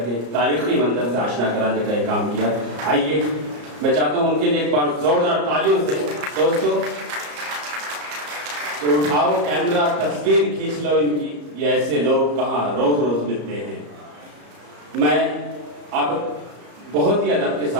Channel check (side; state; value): left; late; 34 ms